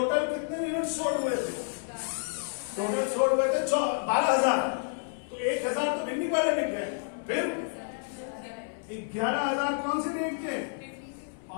कितने यूनिट सोल्ड हुए थे, टोटल सोल्ड हुए थे 12,000। तो 1,000 तो बिकने वाले बिक गए, फिर 11,000 कौन सी रेट के,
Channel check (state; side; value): silent; right; 58 dB below the other